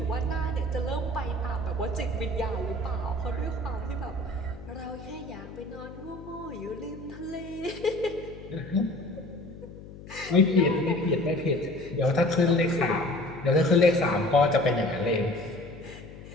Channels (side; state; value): left; noise; hum, 15 dB below the sound